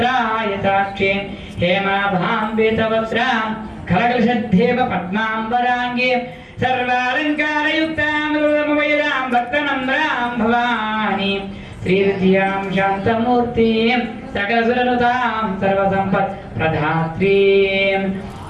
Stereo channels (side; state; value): both; identical; correlation 1.00